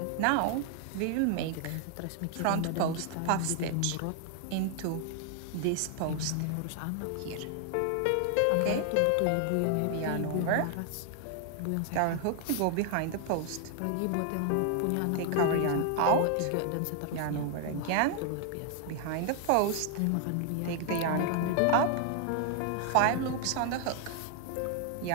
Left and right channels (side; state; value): both; different; correlation 0.00